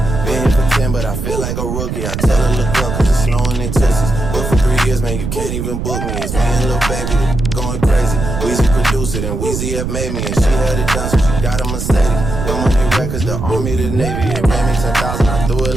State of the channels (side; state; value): right; noise; rumble, 4 dB below the sound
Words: Been here for 10, but I feel like a rookie. I tell her look up, cause it's snowing in Texas. But for 3 years, man, you can't even book me. It's me and Lil Baby, the going crazy. Weezy produced it, and Weezy have made me. And she had it done, so she got a Mercedes. Your money records, the Army, the Navy. It ran me 10,000, I threw it